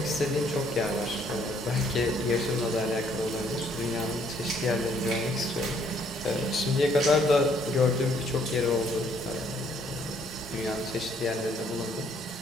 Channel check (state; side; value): normal; both; correlation 0.66